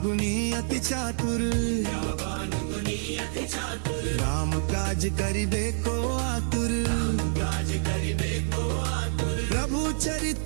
गुणी अति चातुर, विद्यावान गुणी अति चातुर। राम काज करिबे को आतुर। काज करिबे को आतुर। प्रभु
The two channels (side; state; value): left; silent; digital silence